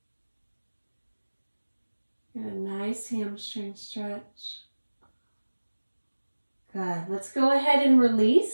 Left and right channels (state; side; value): inverted; both; correlation -1.00